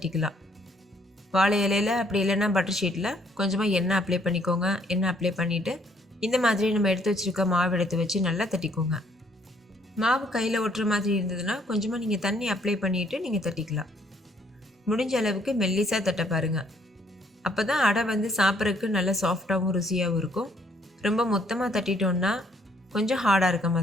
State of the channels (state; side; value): normal; both; correlation 0.66